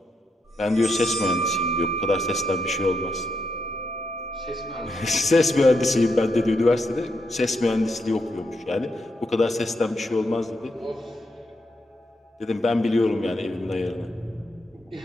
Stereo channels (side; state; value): both; normal; correlation 0.81